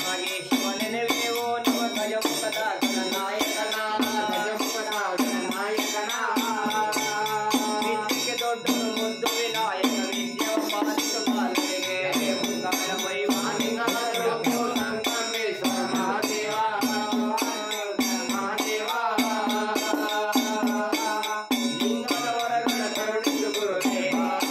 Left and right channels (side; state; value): both; identical; correlation 1.00